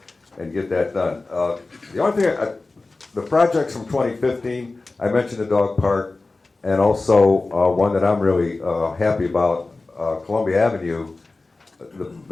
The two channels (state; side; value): quieter; right; 3.4 dB